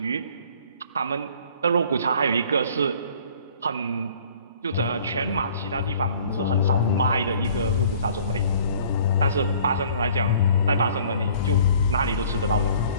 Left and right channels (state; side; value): inverted; both; correlation -0.53